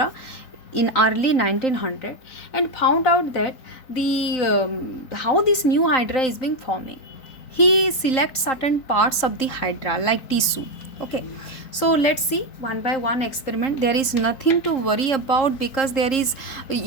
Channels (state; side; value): late; right; 3.7 ms